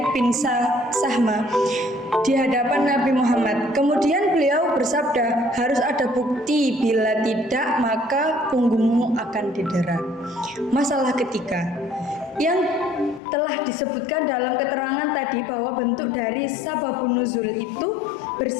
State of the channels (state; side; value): drops out; right; at 13.2 s